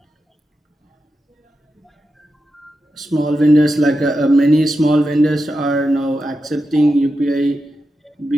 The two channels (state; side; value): normal; both; correlation 0.89